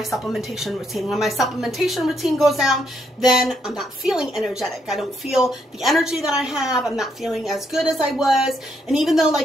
supplementation routine. When my supplementation routine goes down, then I'm not feeling energetic. I don't feel the energy that I have. I'm not feeling as good as I was. And even though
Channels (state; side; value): normal; both; correlation 0.75